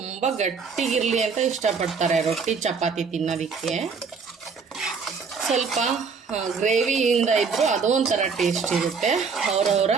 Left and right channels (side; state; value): left; quieter; 5.4 dB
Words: ಗಟ್ಟಿಗಿರಲಿ ಅಂತ ಇಷ್ಟಪಡ್ತಾರೆ ರೊಟ್ಟಿ ಚಪಾತಿ ತಿನ್ನೋದಕ್ಕೆ. ಸ್ವಲ್ಪ ಗ್ರೇವಿಯಿಂದ ಇದ್ದರೂ ಅದು ಒಂಥರ ಟೇಸ್ಟ್ ಇರುತ್ತೆ. ಅವರವರ